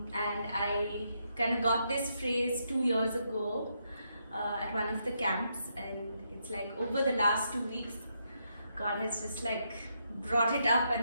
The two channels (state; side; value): inverted; both; correlation -0.79